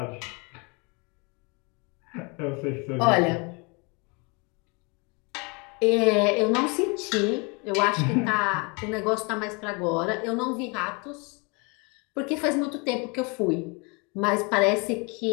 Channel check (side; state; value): right; quieter; 31.1 dB